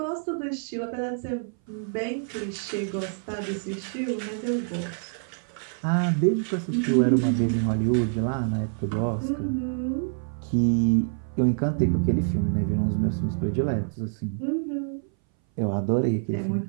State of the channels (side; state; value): left; silent; 59 dB below the other